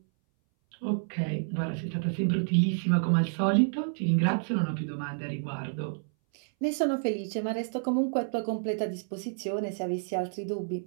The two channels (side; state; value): left; silent; 58 dB below the other